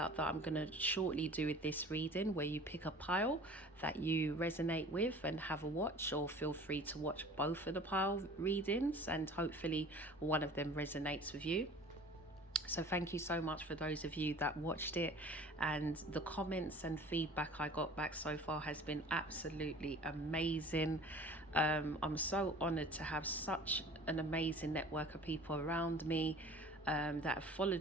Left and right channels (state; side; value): normal; both; correlation 0.45